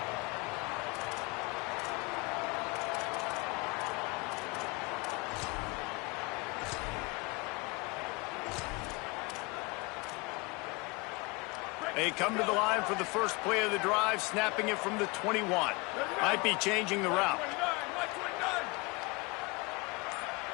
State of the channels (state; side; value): quieter; right; 26.5 dB